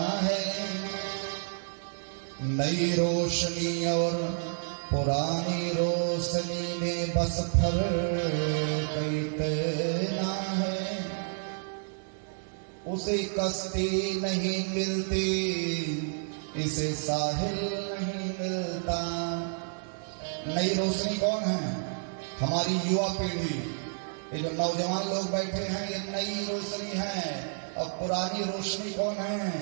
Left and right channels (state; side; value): silent; left; digital silence